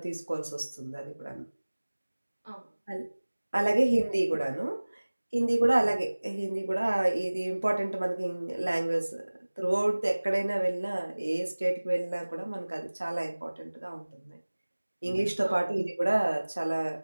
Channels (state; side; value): inverted; both; correlation -1.00